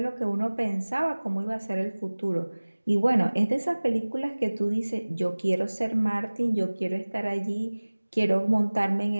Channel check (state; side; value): inverted; both; correlation -1.00